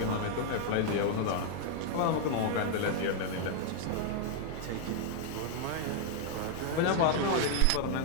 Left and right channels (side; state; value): both; different; correlation 0.00